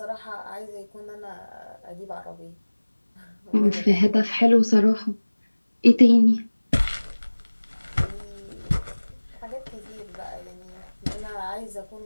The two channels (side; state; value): both; inverted; correlation -1.00